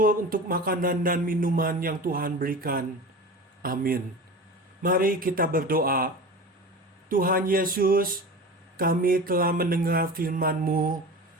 untuk makanan dan minuman yang Tuhan berikan. Amin. Mari kita berdoa. Tuhan Yesus, kami telah mendengar firman-Mu.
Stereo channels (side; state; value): both; normal; correlation 0.33